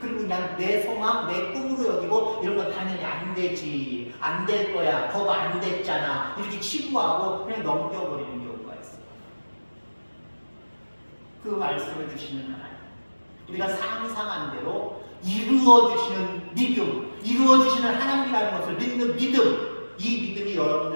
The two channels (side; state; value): both; inverted; correlation -1.00